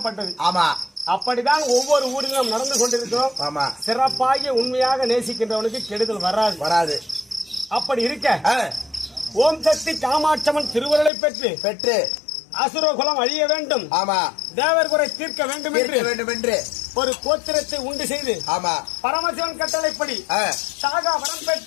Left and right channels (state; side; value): drops out; right; at 11.1 s